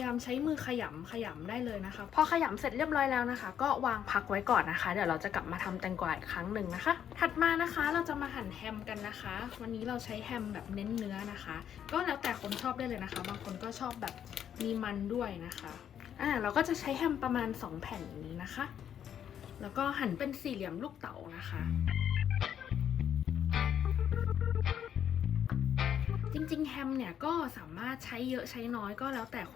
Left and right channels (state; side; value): quieter; right; 9.3 dB